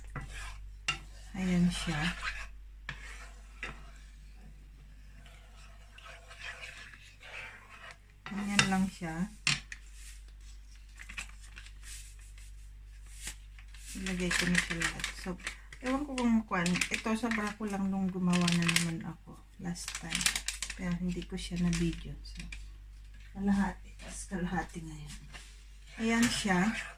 ayan siya. Ganyan lang siya. Ilagay ko na siya lahat. So, ewan ko kung ito sobra ko lang nung gumawa na naman ako last time. Pero hindi ko siya na video. So, kalahati. Tapos kalahati ngayon. Ayan siya.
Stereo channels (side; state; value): both; identical; correlation 1.00